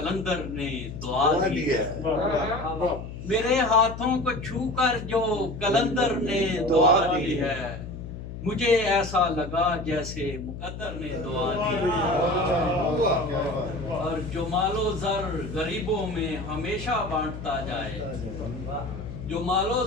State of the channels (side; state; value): left; noise; hum, 9 dB below the sound